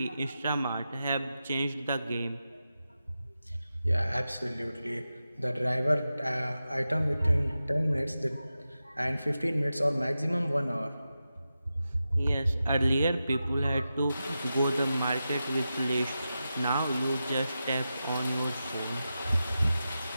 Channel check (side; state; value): both; inverted; correlation -0.91